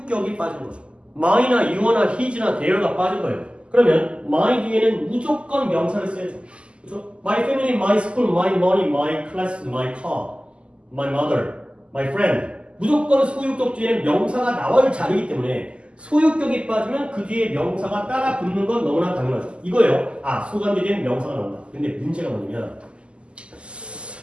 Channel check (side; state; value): left; late; 0.053 ms